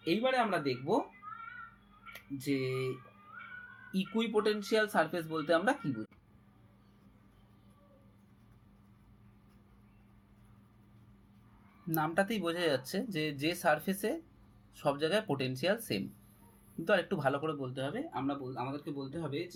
এইবারে আমরা দেখব যে ইকুইপোটেনশিয়াল সারফেস বলতে আমরা কি বুঝি। নামটাতেই বোঝা যাচ্ছে যে সারফেসে সব জায়গায় পোটেনশিয়াল সেম, কিন্তু আর একটু ভালো করে বলতে হবে, আমাদেরকে বলতে হবে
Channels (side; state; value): both; identical; correlation 1.00